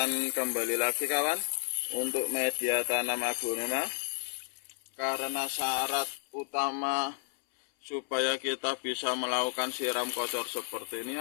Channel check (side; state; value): right; silent; 56 dB below the other